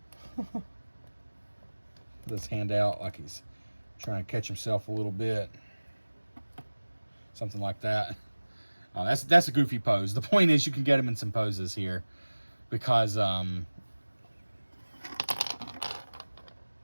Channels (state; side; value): inverted; both; correlation -1.00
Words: Put his hand out like he's trying to catch himself a little bit. Something like that. That's a goofy pose. The point is you can get him in some poses here because of